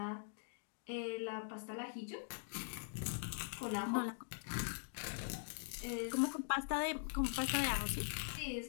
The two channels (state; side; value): silent; right; digital silence